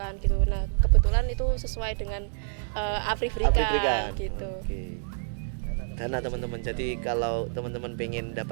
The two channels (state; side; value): silent; left; digital silence